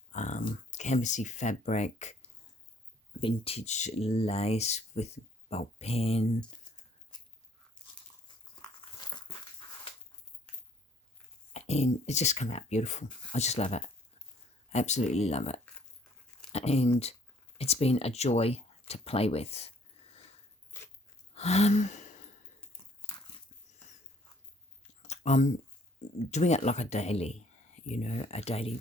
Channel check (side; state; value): both; normal; correlation 0.60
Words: canvasy fabric, vintage lace with bulk pen, and it's just come out beautiful. I just love it, absolutely love it, and it's been a joy to play with. I'm doing it like a daily, a